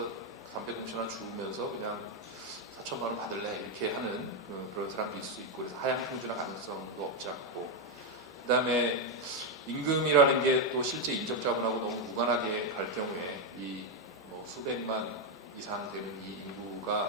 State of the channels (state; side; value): normal; both; correlation 0.04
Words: 담배 공천한 주우면서 그냥 4천만 원 받을래 이렇게 하는 그런 사람도 있을 수 있고 그래서 하향 평준화 가능성도 없지 않고 그 다음에 임금이라는 게 또 실제 인적 자본하고 너무 무관하게 갈 경우에 이 뭐 수백만 이상 되는 이